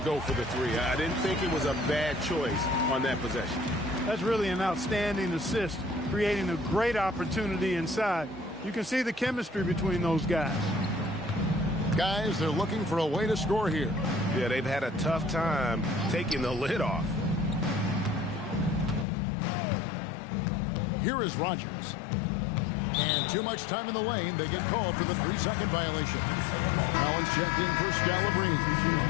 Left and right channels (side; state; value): right; drops out; at 19.1 s